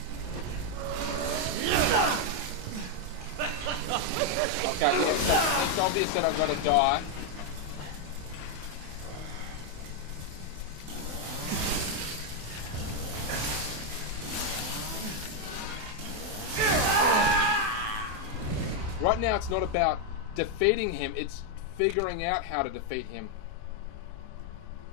Okay, yeah, so it's obvious that I've got to die. Right now it's not about defeating him, it's figuring out how to defeat him.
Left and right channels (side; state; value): left; late; 28 ms